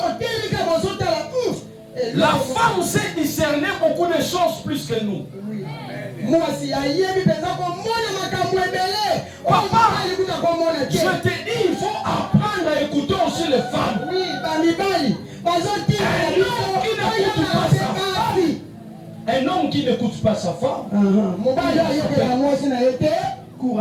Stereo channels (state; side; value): identical; both; correlation 1.00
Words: La femme sait discerner beaucoup de choses plus que nous. Papa, je te dis, il faut apprendre à écouter aussi les femmes. Un homme qui n'écoute pas sa femme court